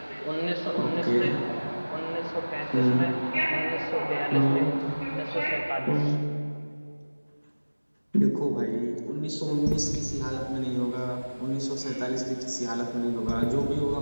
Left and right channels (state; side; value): inverted; both; correlation -1.00